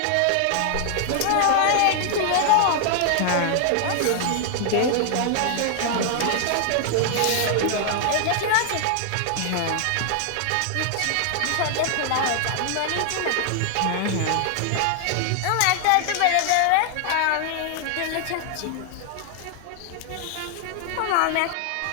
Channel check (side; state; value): both; different; correlation 0.00